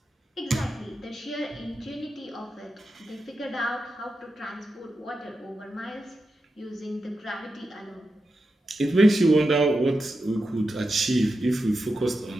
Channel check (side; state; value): both; normal; correlation 0.89